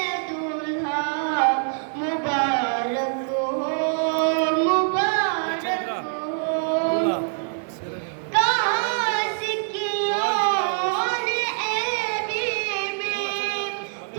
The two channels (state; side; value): silent; left; digital silence